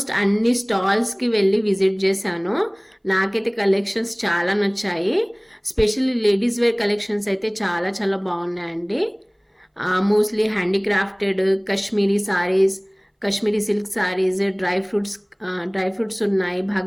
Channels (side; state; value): both; identical; correlation 1.00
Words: అన్ని స్టాల్స్కి వెళ్ళి విజిట్ చేశాను. నాకైతే కలెక్షన్స్ చాలా నచ్చాయి. స్పెషల్లీ లేడీస్ వేర్ కలెక్షన్స్ అయితే చాలా చాలా బాగున్నాయండి. Mostly handicrafted Kashmiri saris, Kashmiri silk saris, dry fruits ఉన్నాయి,